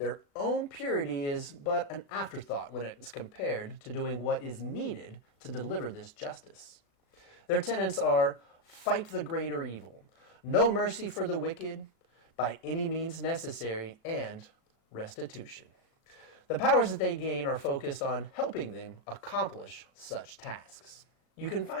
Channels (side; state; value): right; late; 37 ms